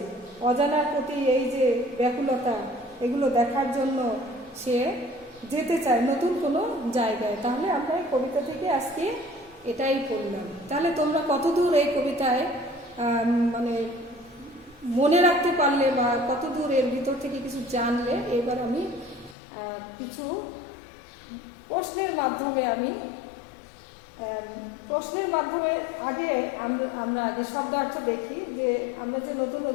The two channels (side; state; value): right; drops out; at 19.4 s